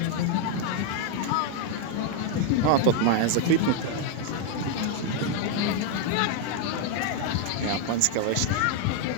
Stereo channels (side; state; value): both; different; correlation 0.00